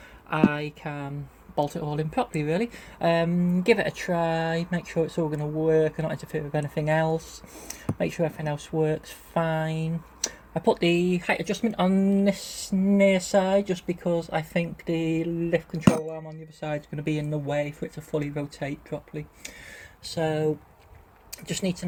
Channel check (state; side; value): identical; both; correlation 1.00